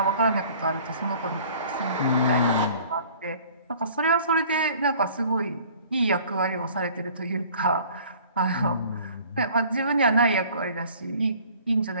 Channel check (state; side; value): inverted; both; correlation -0.51